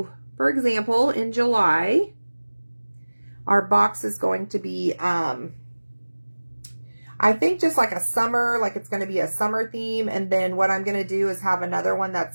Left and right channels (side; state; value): both; inverted; correlation -1.00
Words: for example, in July, our box is going to be, I think just like a summer, like it's going to be a summer theme. And then what I'm going to do is have another one